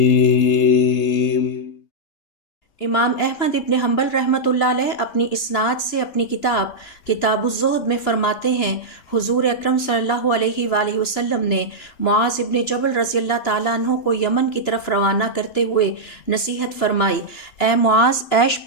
امام احمد ابن حنبل رحمۃ اللہ علیہ اپنی اسناد سے اپنی کتاب الزہد میں فرماتے ہیں، حضور اکرم صلی اللہ علیہ وآلہ وسلم نے معاذ ابن جبل رضی اللہ تعالیٰ عنہ کو یمن کی طرف روانہ کرتے ہوئے نصیحت فرمائی، اے معاذ، عیش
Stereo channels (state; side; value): late; right; 3.0 ms